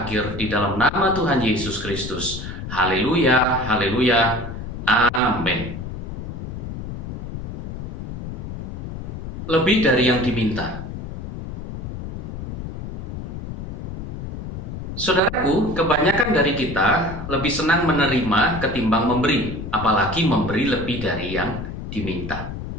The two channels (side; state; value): left; noise; rumble, 7 dB below the sound